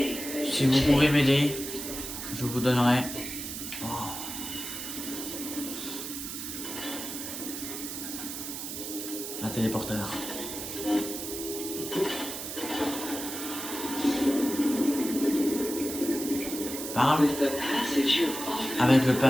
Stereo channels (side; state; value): right; noise; hiss, 7 dB below the sound